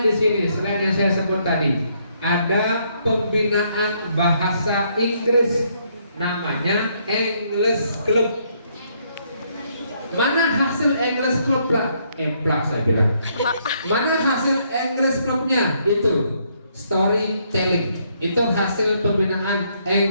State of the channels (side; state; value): both; inverted; correlation -0.71